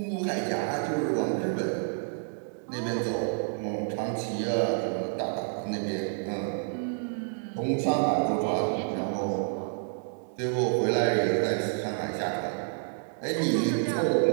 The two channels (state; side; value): silent; left; digital silence